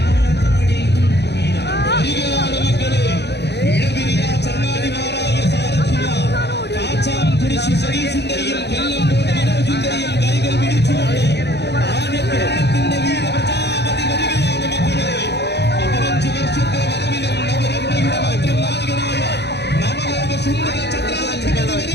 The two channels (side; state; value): right; late; 0.49 ms